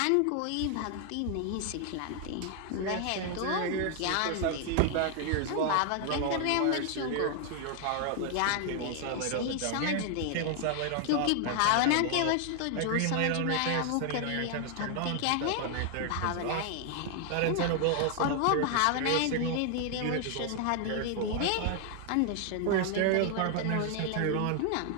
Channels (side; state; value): both; different; correlation 0.00